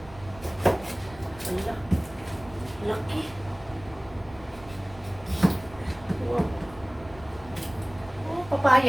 Wala. Laki. Wow. Oh,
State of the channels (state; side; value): noise; right; rumble, 19 dB below the sound